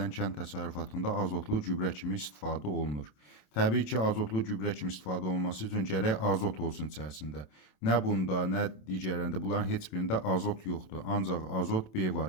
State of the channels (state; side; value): late; right; 27 ms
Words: kənd təsərrüfatında azotlu gübrə kimi istifadə olunur? Təbii ki, azotlu gübrə kimi istifadə olunması üçün gərək azot olsun içərisində. Nə bunda, nə digərlərində, bunların heç birində azot yoxdur. Ancaq azot B